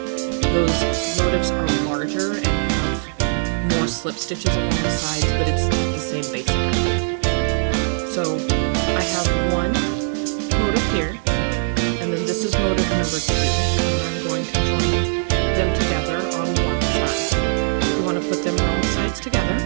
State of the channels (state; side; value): silent; left; digital silence